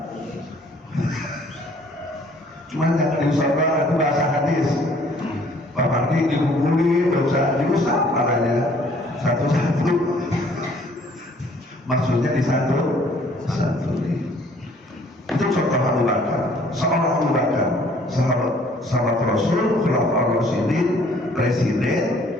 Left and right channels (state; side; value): normal; both; correlation 0.59